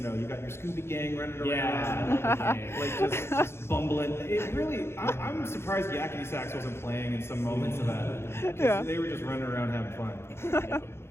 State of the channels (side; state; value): right; late; 0.12 ms